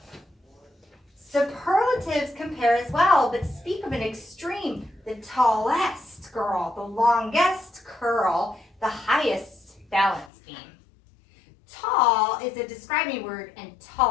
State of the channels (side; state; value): right; drops out; at 10.3 s